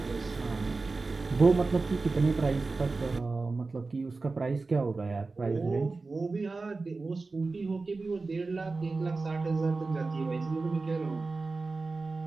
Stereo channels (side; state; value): left; quieter; 3.8 dB